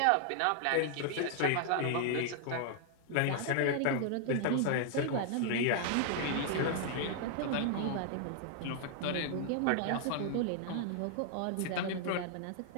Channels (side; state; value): both; different; correlation 0.00